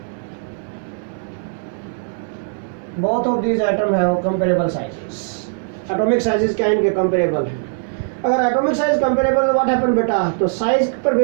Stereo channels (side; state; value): left; silent; digital silence